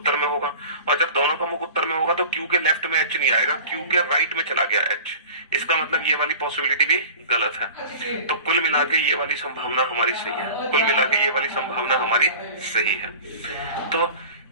में होगा। और जब दोनों का मुख उत्तर में होगा तो Q के लेफ्ट में H नहीं आएगा, Q के राइट में चला गया H। इसका मतलब ये वाली पॉसिबिलिटी भी गलत है। तो कुल मिला के ये वाली संभावना हमारी सही है, कुल मिला के ये वाली संभावना हमारी सही है। तो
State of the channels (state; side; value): inverted; both; correlation -0.39